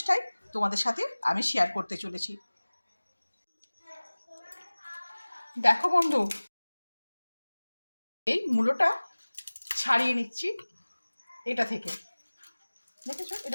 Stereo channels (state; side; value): inverted; both; correlation -1.00